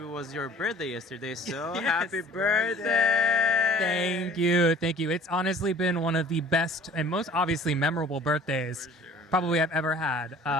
was your birthday yesterday, so Yes. happy birthday! Thank you. Thank you. It's honestly been one of the best and most obviously memorable birthdays probably I've ever had.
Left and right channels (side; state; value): both; normal; correlation 0.49